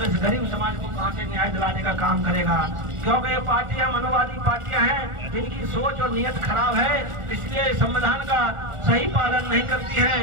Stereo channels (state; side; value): late; left; 1.4 ms